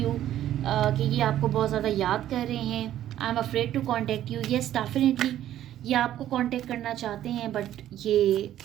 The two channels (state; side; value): quieter; left; 12.1 dB